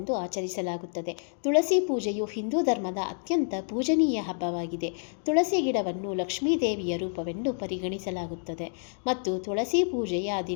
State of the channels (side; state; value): right; silent; 59 dB below the other